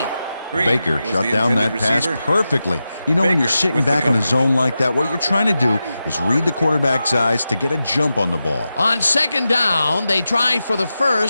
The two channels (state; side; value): inverted; both; correlation -0.91